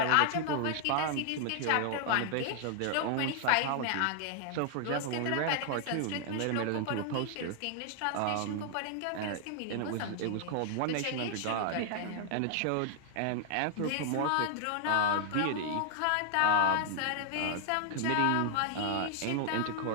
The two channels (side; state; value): both; different; correlation 0.00